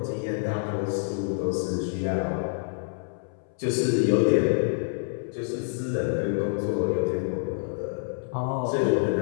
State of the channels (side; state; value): right; silent; 60 dB below the other